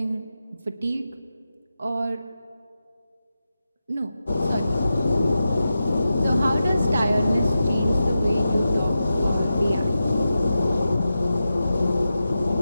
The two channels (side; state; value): both; inverted; correlation -0.91